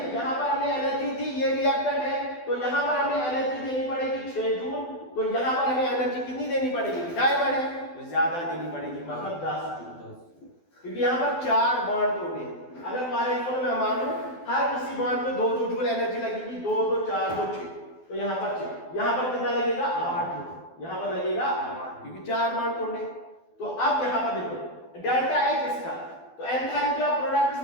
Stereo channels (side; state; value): right; late; 12 ms